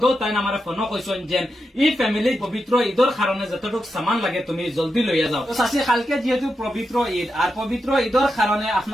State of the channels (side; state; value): both; normal; correlation 0.87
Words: তাই আমার ফোন কইছেন যে এই ফ্যামিলি পবিত্র ঈদর কারণে যতটুকু সামান লাগে তুমি জলদি লইয়া যাও। তো চাষি কালকে যেহেতু পবিত্র ঈদ আর পবিত্র ঈদর কারণে